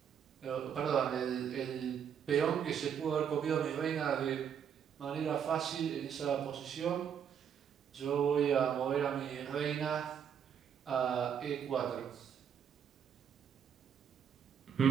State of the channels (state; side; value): quieter; left; 8.1 dB